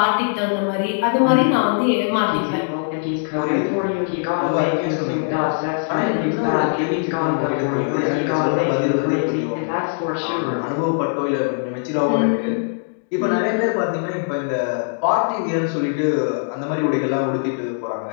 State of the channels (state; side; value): silent; right; digital silence